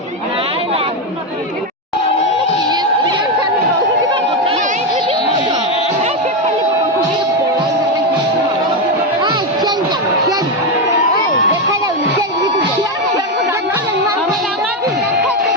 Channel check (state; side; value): normal; both; correlation 0.09